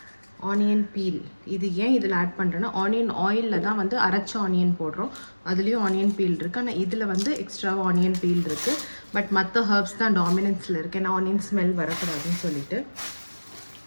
ஆனியன் பீல், இது ஏன் இதில் ஆட் பண்ணுறேன்னா, ஆனியன் ஆயிலில் தான் வந்து அரைச்ச ஆனியன் போடுறோம். அதுலேயும் ஆனியன் பீல் இருக்குது. ஆனால் இதில் வந்து எக்ஸ்ட்ரா ஆனியன் பீல் இருக்குது. பட் மற்ற ஹர்ப்ஸ் தான் டாமினன்ஸில் இருக்குது. ஏன்னா ஆனியன் ஸ்மெல் வரக்கூடாதுன்னு சொல்லிட்டு.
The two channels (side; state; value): both; inverted; correlation -1.00